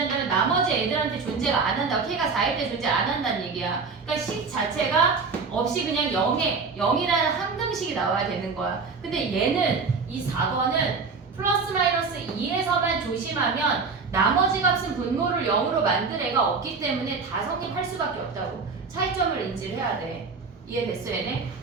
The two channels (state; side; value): quieter; left; 4.7 dB